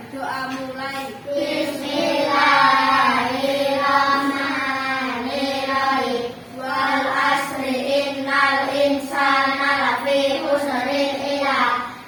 mulai. Bismillahirrahmanirrahim. Wal asri innal insana lafi khusrin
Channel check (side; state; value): both; identical; correlation 1.00